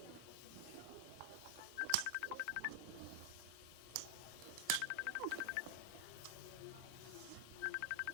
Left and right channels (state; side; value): different; both; correlation 0.00